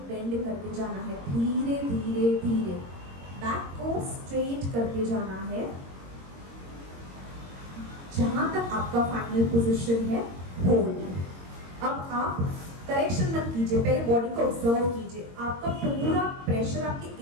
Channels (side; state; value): left; late; 22 ms